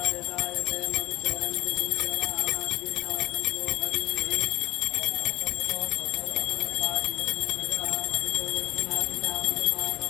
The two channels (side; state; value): right; quieter; 18.3 dB